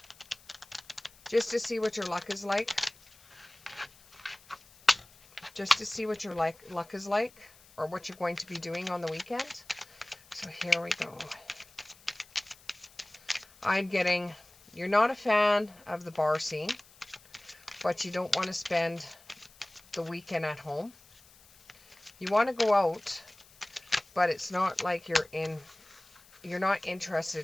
Just to see what your luck is like. Just to see what your luck is like, or what you're going to be doing on the weekend. So here we go. I'm getting, you're not a fan of the bar scene, but you don't want to spend the weekend at home. You want to go out, but it's not like you're not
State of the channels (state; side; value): noise; left; hiss, 25 dB below the sound